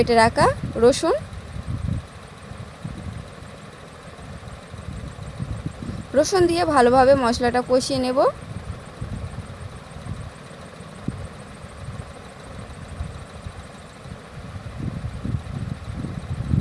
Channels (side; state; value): both; identical; correlation 1.00